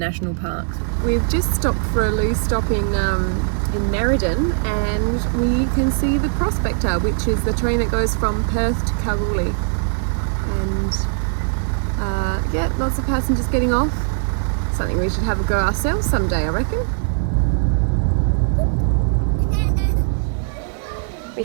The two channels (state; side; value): silent; left; 66 dB below the other